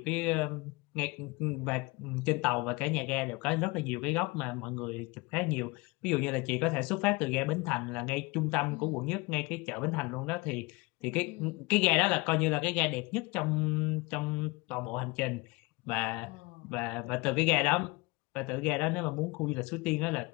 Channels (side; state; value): right; quieter; 25.0 dB